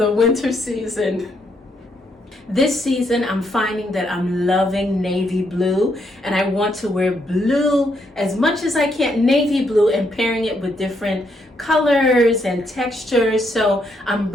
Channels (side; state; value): both; normal; correlation 0.75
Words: winter season. This season, I'm finding that I'm loving navy blue, and I want to wear blue as much as I can, navy blue, and pairing it with different colors and textures. So I'm